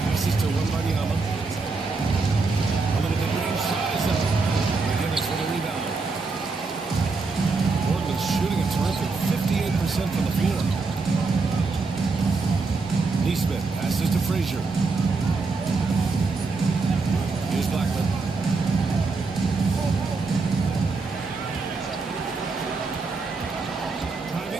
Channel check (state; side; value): quieter; left; 4.1 dB